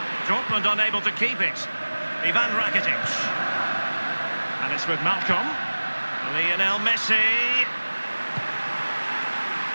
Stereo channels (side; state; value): both; inverted; correlation -1.00